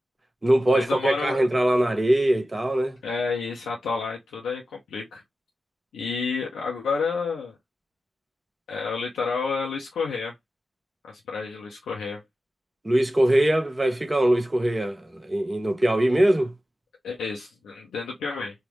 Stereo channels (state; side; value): normal; both; correlation 0.93